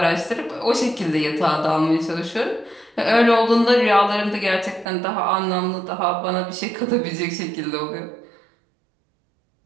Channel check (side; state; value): left; drops out; at 4.9 s